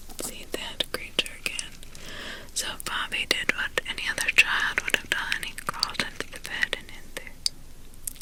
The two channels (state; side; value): identical; both; correlation 1.00